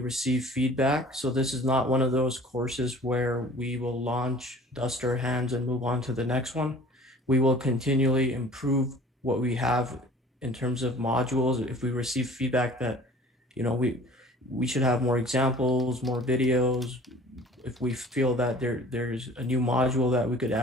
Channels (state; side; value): normal; both; correlation 0.47